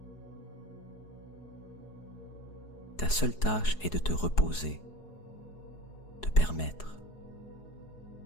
Ta seule tâche est de te reposer, de permettre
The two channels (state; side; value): late; right; 4.7 ms